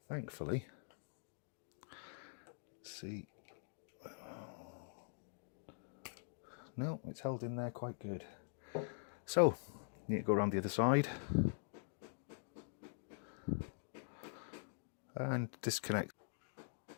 Thankfully. Let's see. No, it's held in there quite good. So, need to go around the other side and disconnect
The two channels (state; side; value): silent; right; digital silence